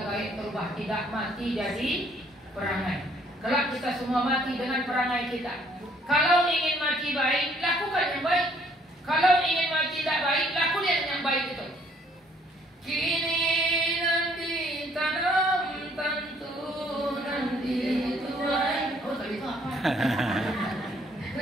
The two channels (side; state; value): both; normal; correlation 0.63